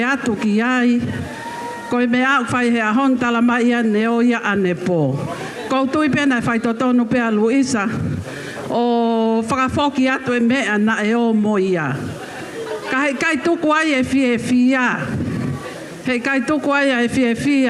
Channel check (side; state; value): both; identical; correlation 1.00